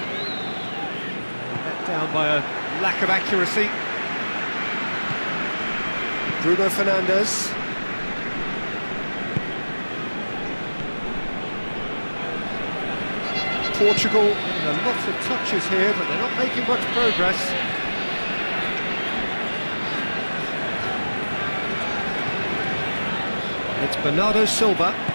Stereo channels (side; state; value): both; inverted; correlation -1.00